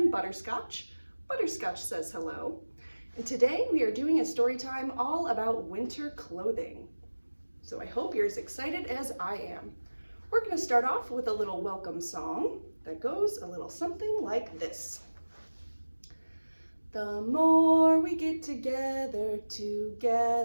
Butterscotch. Butterscotch says hello. And today we are doing a story time all about winter clothing. So I hope you're as excited as I am. We're going to start off with a little welcome song that goes a little something like this. The more we get together, the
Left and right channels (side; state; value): both; inverted; correlation -1.00